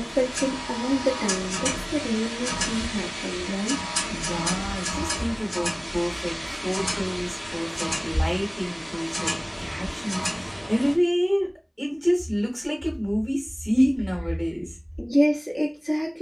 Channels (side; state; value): both; identical; correlation 1.00